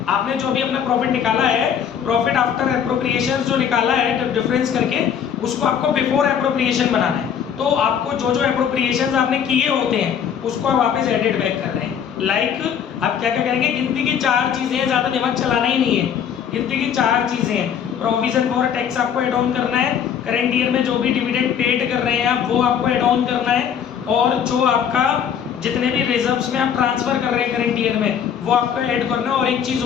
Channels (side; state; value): right; quieter; 8.2 dB